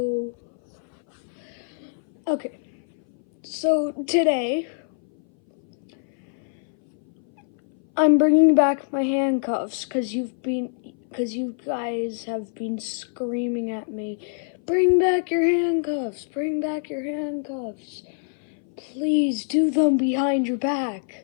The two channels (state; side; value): silent; right; 59 dB below the other